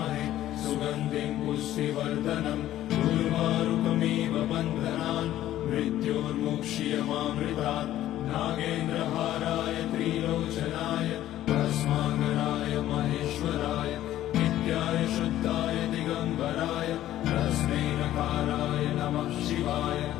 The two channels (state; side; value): quieter; right; 13.3 dB